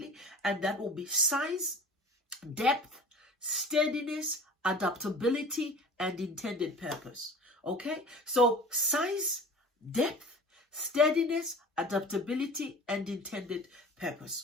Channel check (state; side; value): normal; both; correlation 0.40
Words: And that will be size, depth, steadiness, adaptability, and intended purpose. Okay, so size, depth, steadiness, adaptability, and intended